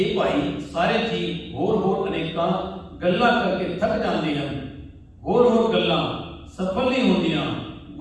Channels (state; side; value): identical; both; correlation 1.00